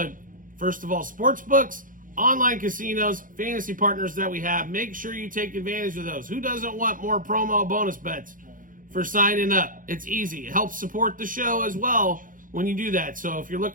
first of all, sports books, online casinos, fantasy partners that we have. Make sure you take advantage of those. Who doesn't want more promo bonus bets for signing up? It's easy. It helps support the show as well when you do that. So if you're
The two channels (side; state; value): left; late; 0.39 ms